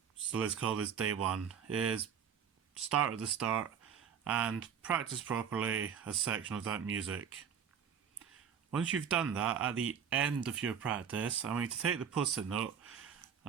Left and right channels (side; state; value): left; quieter; 7.6 dB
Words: so let's call this day one, is start at the start and practice properly a section of that music. Once you've done that, at the end of your practice, I want you to take the post-it note